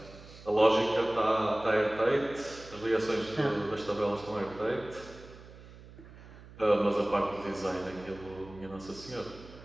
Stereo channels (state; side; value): noise; right; hum, 19 dB below the sound